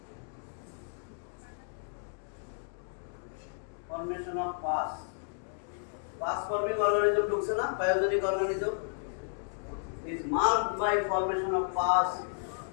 formation of pus. Pus forming organism ঢুকছে না, pyogenic organism is marked by formation of pus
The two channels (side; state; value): right; silent; digital silence